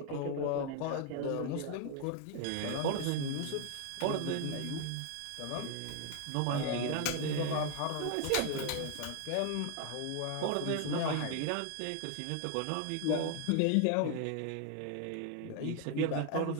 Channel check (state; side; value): different; both; correlation 0.00